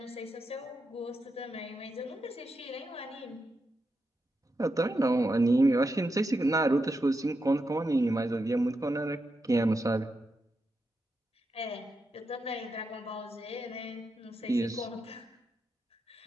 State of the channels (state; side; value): normal; both; correlation 0.85